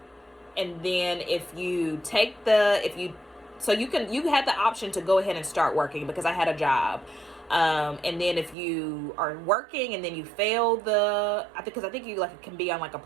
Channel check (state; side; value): drops out; left; at 8.6 s